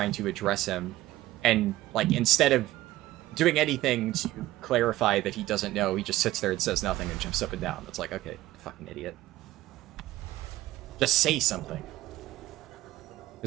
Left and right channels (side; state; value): left; quieter; 16.1 dB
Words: to address him, and, like, instead of doing anything to clarify that he doesn't know, he just sits there and says nothing and jumps up and down. It's like, okay, fucking idiot. Just say something.